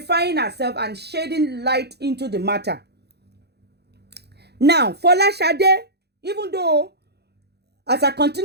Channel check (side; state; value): left; late; 0.48 ms